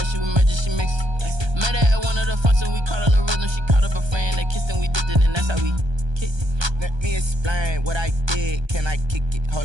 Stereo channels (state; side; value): late; left; 1.3 ms